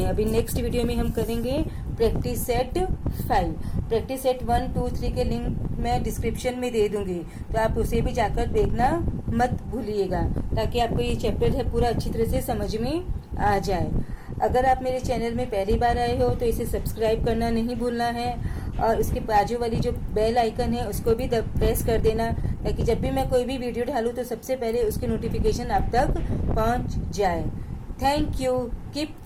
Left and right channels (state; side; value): identical; both; correlation 1.00